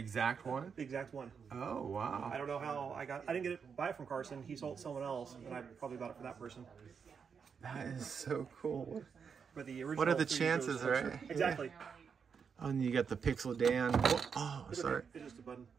one? The exact one. Oh wow. I don't know how I didn't buy it from Carson. He sold someone else, and I probably bought it for that person. That is so cool. But the original. What are the chances, right? Exactly. Yeah. Oh, and you got the Pixel Dan. Oh, sorry. It's just a button.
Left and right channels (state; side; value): quieter; left; 6.3 dB